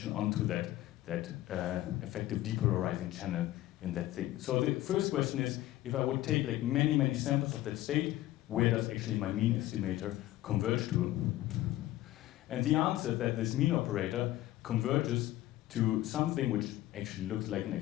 onto that effective depolarizing channel in that thing. So the first question is, if I would take like many samples of that state, where does actually my mean estimator converge to? And the answer is that this mean operator converges to something which actually looks like an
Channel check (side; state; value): right; quieter; 15.4 dB